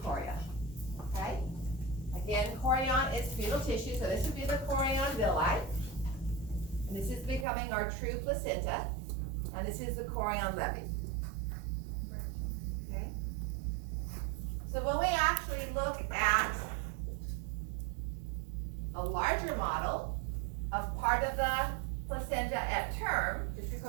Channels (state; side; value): drops out; left; at 7.5 s